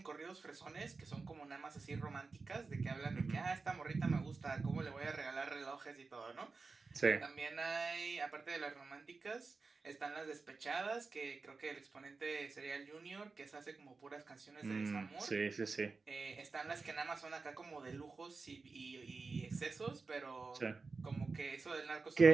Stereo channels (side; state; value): left; quieter; 4.2 dB